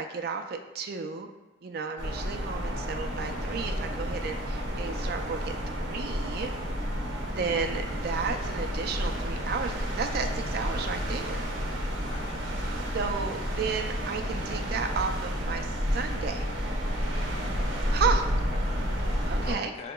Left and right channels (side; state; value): both; normal; correlation 0.50